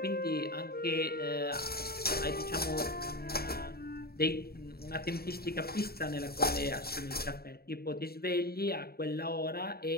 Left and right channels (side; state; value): right; late; 0.45 ms